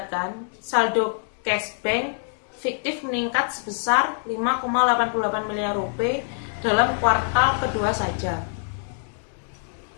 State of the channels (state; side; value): silent; right; 62 dB below the other